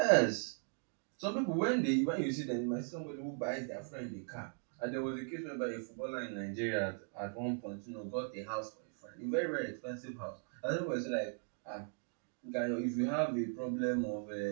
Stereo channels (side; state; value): left; silent; 52 dB below the other